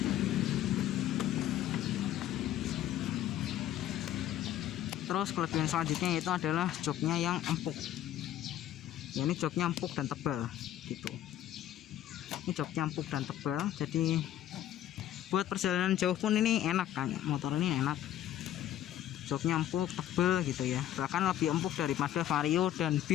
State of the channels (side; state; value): right; quieter; 12.1 dB